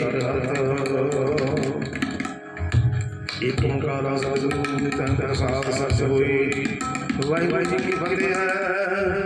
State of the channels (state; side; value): identical; both; correlation 1.00